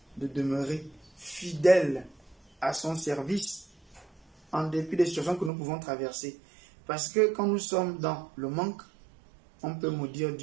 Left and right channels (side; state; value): left; drops out; at 5.5 s